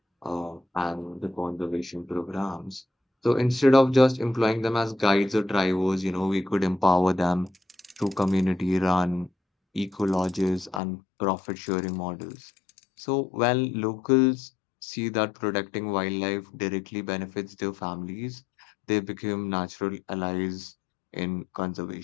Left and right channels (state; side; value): drops out; right; at 10.8 s